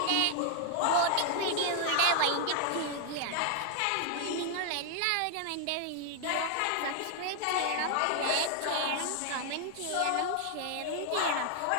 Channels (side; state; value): both; different; correlation 0.00